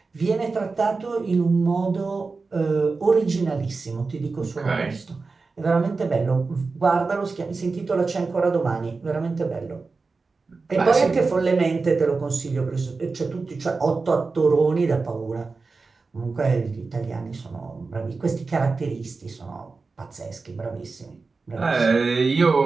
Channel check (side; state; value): left; quieter; 4.2 dB